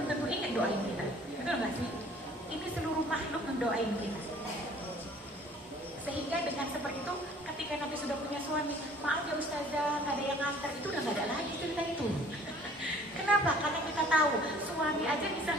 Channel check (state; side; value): normal; both; correlation 0.53